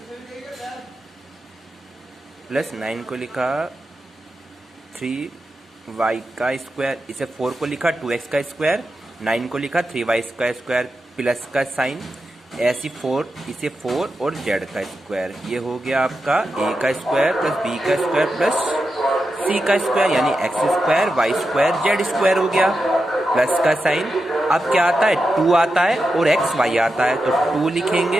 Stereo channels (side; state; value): both; normal; correlation 0.89